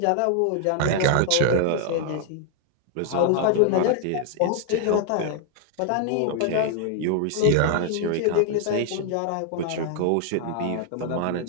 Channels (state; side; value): different; both; correlation 0.00